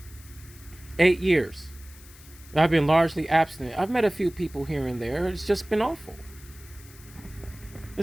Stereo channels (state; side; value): noise; left; hiss, 21 dB below the sound